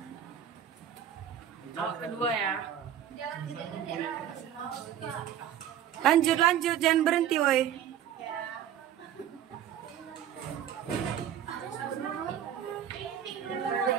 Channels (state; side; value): quieter; left; 10.0 dB